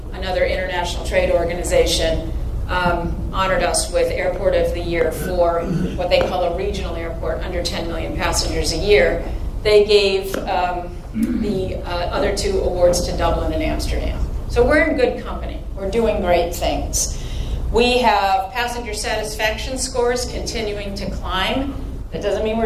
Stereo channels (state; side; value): identical; both; correlation 1.00